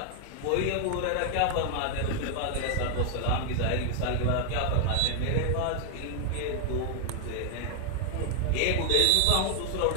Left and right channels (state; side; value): different; both; correlation 0.00